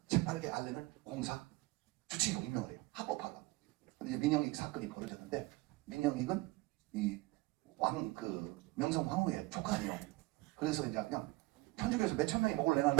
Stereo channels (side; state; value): left; quieter; 21.9 dB